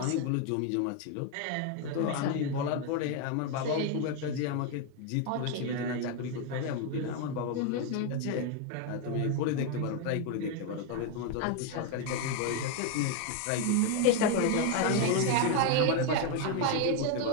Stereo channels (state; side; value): different; both; correlation 0.01